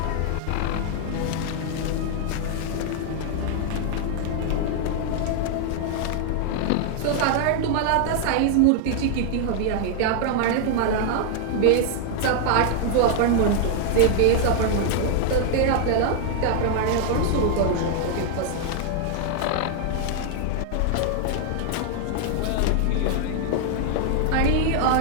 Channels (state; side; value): different; both; correlation 0.00